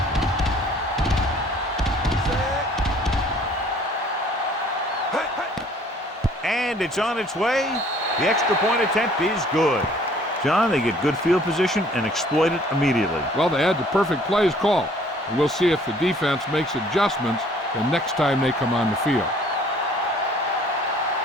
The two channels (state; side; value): normal; both; correlation 0.56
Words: And it's on its way. The extra point attempt is good. John, they get good field position and exploit it immediately. Well, they had the perfect plays called. And we'll see if the defense makes adjustments the next time they come on the field.